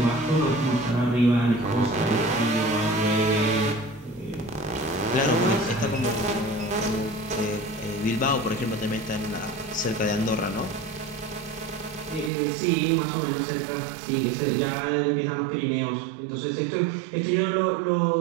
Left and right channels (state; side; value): drops out; left; at 12.3 s